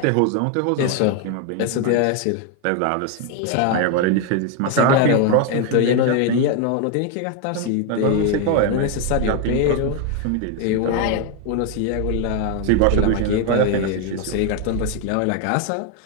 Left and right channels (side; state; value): both; different; correlation 0.01